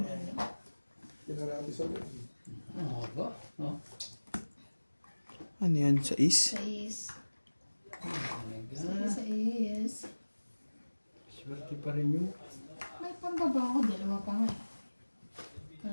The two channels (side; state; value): both; inverted; correlation -1.00